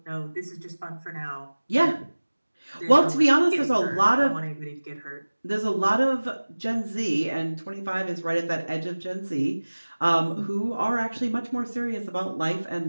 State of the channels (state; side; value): inverted; both; correlation -1.00